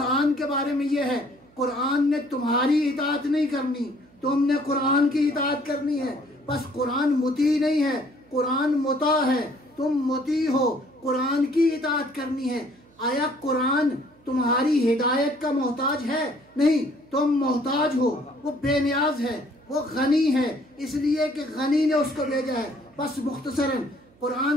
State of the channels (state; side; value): noise; right; hum, 29 dB below the sound